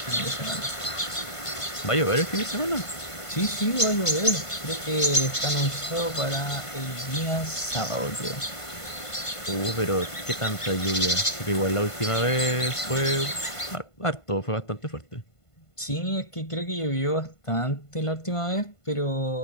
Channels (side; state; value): right; late; 1.5 ms